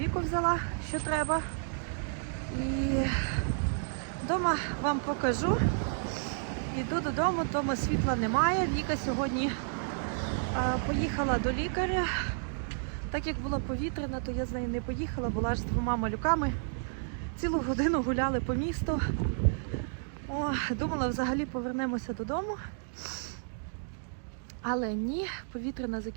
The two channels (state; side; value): silent; left; digital silence